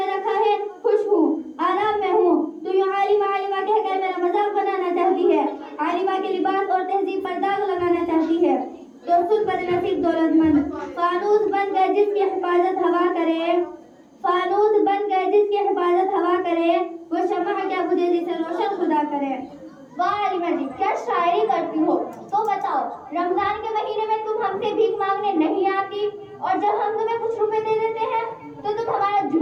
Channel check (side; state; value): both; identical; correlation 1.00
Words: رکھا ہے خوش ہوں، آرام میں ہوں، تو یوں عالمہ عالمہ کہہ کر میرا مذاق بنانا چاہتی ہے، عالمہ کے لباس اور تہذیب پر داغ لگانا چاہتی ہے۔ تو سن بدنصیب دولت مند، فانوس بن گئے جس کی حفاظت ہوا کرے، فانوس بن گئے جس کی حفاظت ہوا کرے، وہ شمع کیا بجھے جسے روشن خدا کرے۔ واہ عالمہ جی، کیا شاعری کرتی ہو۔ تو بتاؤ، رمضان کے مہینے میں تم ہم سے بھیک مانگنے نہیں آتی، اور جب ہم تمہیں کچھ روپے دے دیتے ہیں تو تم ہمارا